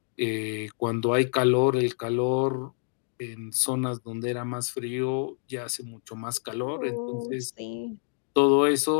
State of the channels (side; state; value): right; silent; 60 dB below the other